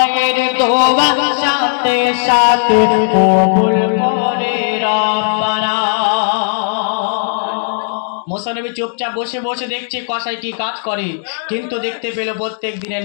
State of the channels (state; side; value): silent; right; digital silence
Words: দোয়া সাথে সাথে কবুল করে রব্বানা। মুসা নবী চুপচাপ বসে বসে দেখছে কসাই কি কাজ করে। কিন্তু দেখতে পেল প্রত্যেক দিনের